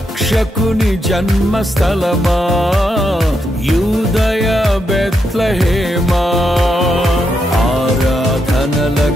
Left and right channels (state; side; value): normal; both; correlation 0.82